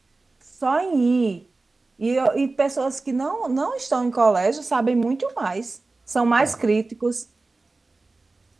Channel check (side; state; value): left; quieter; 3.5 dB